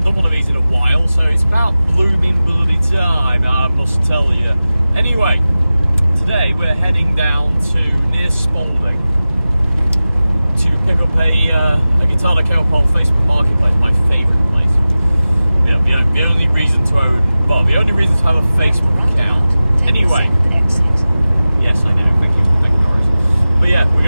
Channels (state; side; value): inverted; both; correlation -0.96